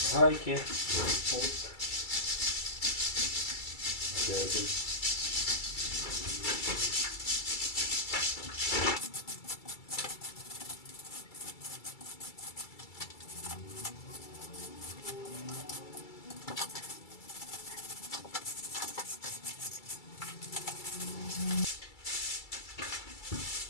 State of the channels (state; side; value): late; right; 2.3 ms